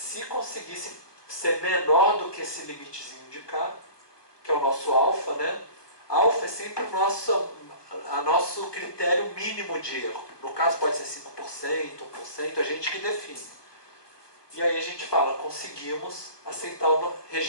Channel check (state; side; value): late; right; 1.2 ms